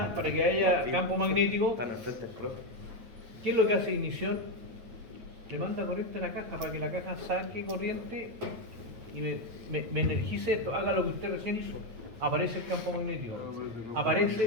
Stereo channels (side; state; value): left; late; 8.7 ms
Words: para que haya campo magnético, Están al frente del profe. ¿qué es lo que hace ignición? Le manda corriente a la caja para que la caja saque corriente y me energice esto, haga lo que usted recién hizo. Aparece el campo magnético.